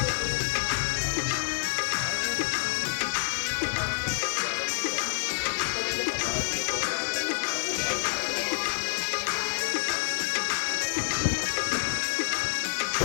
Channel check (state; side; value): silent; right; digital silence